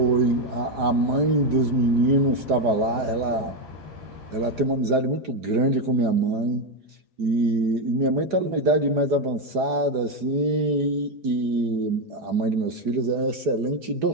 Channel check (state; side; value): late; left; 4.9 ms